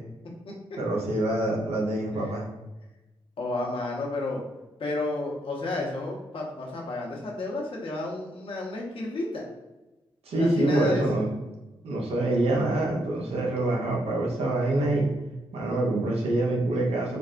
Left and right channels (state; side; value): normal; both; correlation 0.75